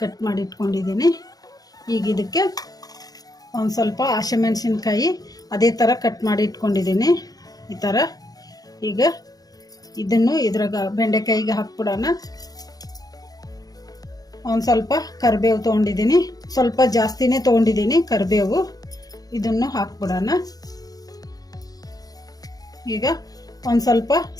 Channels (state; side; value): late; right; 0.18 ms